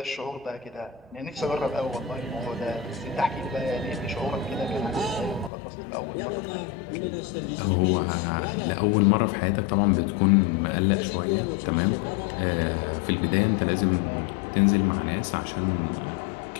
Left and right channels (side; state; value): right; drops out; at 5.5 s